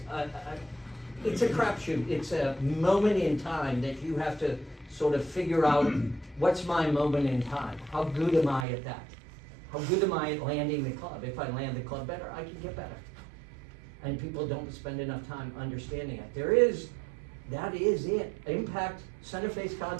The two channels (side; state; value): left; drops out; at 8.7 s